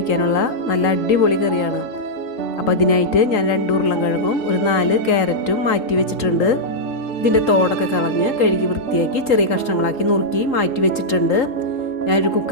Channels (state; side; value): late; right; 3.8 ms